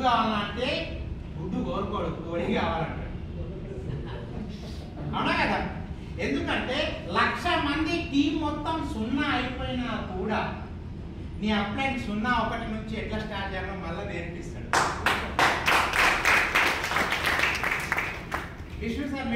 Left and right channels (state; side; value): identical; both; correlation 1.00